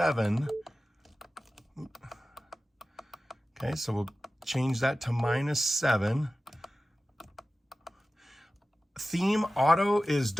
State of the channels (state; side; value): normal; both; correlation 0.95